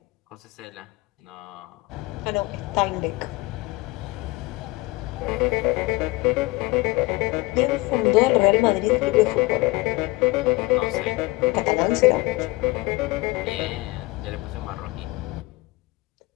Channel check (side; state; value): right; quieter; 21.6 dB